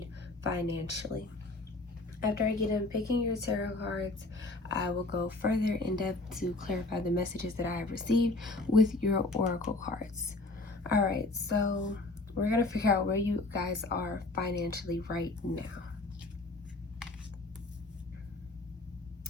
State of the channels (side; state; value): right; quieter; 3.0 dB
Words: financially? After I get done picking your tarot cards, I will go further in depth to clarify the messages that I have received with your oracle cards. All right, so we're going to figure out where you guys are financially right now.